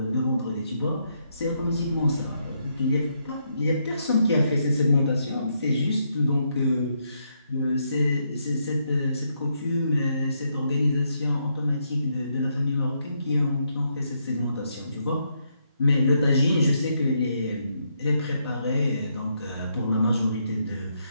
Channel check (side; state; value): both; inverted; correlation -0.77